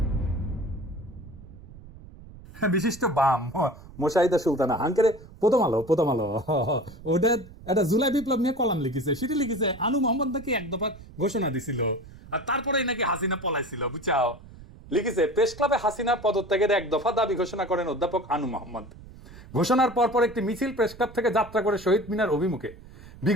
বিশিষ্ট বাম মোশাহিদা সুলতানা হাঙ্কেরে প্রথম আলো ওটা একটা জুলাই বিপ্লব নিয়ে কলাম লিখেছে, সেটি লিখেছে আনু মোহাম্মদ নাকি এক দফা ঘোষণা দিছিল, আর তারপরেই নাকি হাসিনা পলাইছিল, বুঝাও। লিখেছে প্রেস ক্লাবে হাসিনা পদত্যাগের এক দফা দাবি ঘোষণা করেন অধ্যাপক আনু মোহাম্মদ। ঘোষণার পরপর একটি মিছিল প্রেস ক্লাব থেকে যাত্রা করে শহীদ মিনার অভিমুখে।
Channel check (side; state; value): right; noise; rumble, 18 dB below the sound